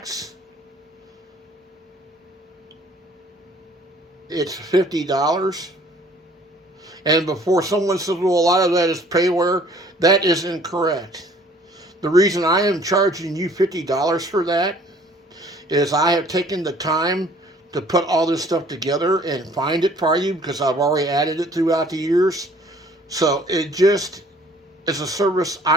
it's $50. And before someone says, well, a lot of that is payware, that is incorrect. The reason I am charging you $50 for that is I have taken the time to put all this stuff together and find it for you because I've already added it throughout the years. So it just is a service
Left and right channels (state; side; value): normal; both; correlation 0.56